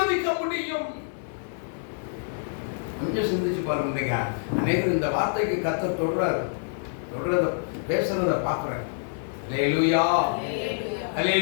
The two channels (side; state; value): right; silent; 60 dB below the other